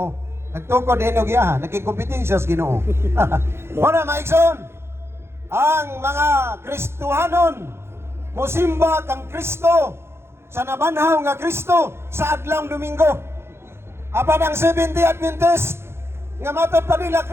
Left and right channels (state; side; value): late; left; 0.12 ms